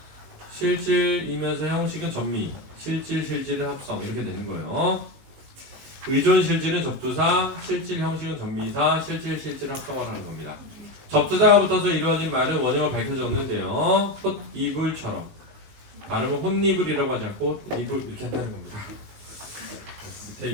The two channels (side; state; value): left; late; 19 ms